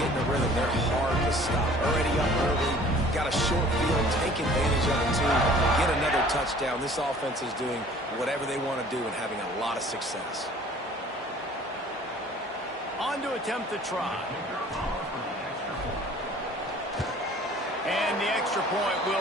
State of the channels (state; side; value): normal; both; correlation 0.51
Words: in a rhythm, they're hard to stop. Already up early, got a short field, take advantage of it too, get another touchdown. This offense is doing whatever they want to do and having a lot of success. On to attempt the try. And the extra point